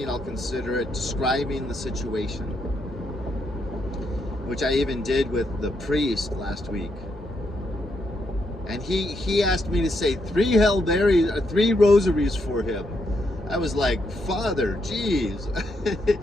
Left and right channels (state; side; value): normal; both; correlation 0.78